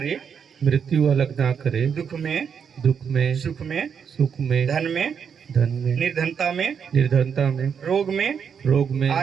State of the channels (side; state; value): left; quieter; 7.1 dB